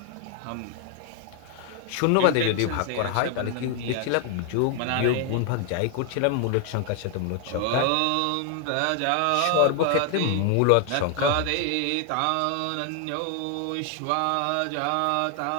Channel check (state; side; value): different; both; correlation 0.00